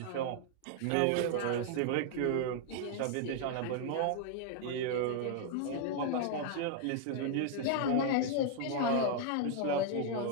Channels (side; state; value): both; different; correlation 0.00